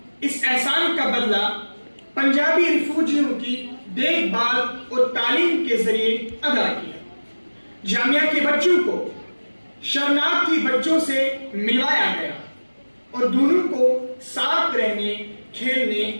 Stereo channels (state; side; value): inverted; both; correlation -1.00